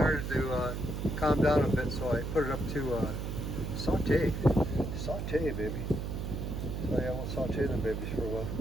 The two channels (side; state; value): right; noise; hum, 4 dB below the sound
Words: to calmed down a bit, so I put it up to saute. Saute, baby. So yeah, we'll saute them babies for a while.